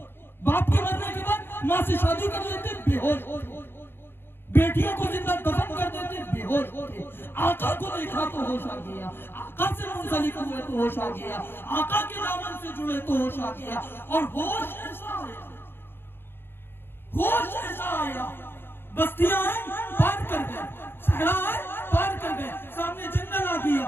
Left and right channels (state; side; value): late; right; 0.10 ms